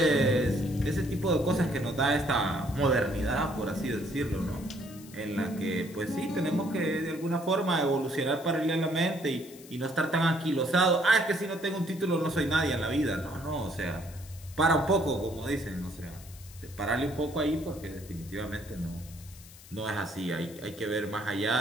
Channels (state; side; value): noise; left; hiss, 20 dB below the sound